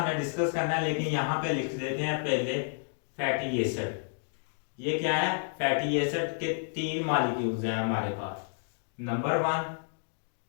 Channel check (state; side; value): silent; right; digital silence